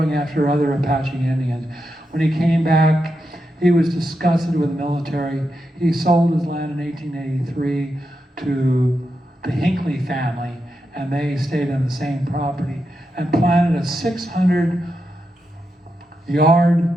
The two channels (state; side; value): normal; both; correlation 0.86